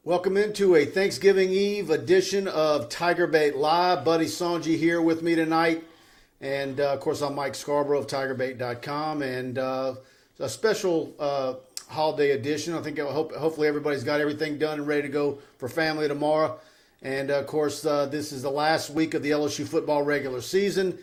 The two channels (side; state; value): both; identical; correlation 1.00